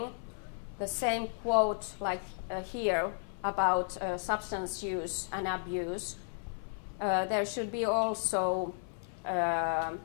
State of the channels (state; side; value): silent; right; 55 dB below the other